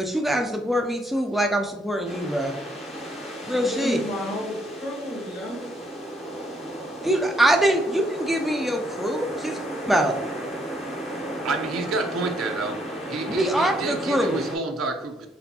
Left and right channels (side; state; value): both; normal; correlation 0.71